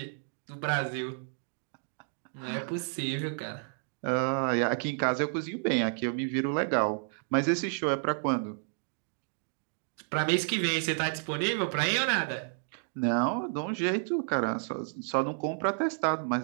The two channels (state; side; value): silent; left; digital silence